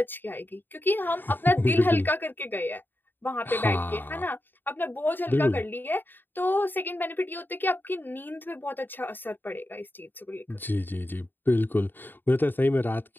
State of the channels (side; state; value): right; late; 0.093 ms